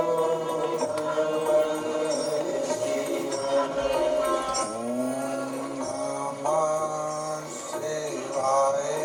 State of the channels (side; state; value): both; identical; correlation 1.00